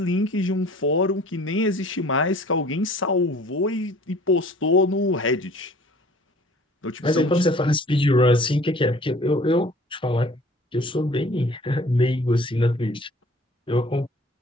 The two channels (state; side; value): normal; both; correlation 0.50